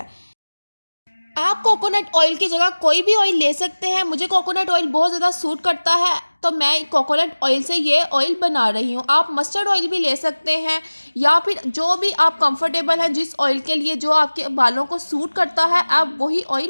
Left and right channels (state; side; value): inverted; both; correlation -1.00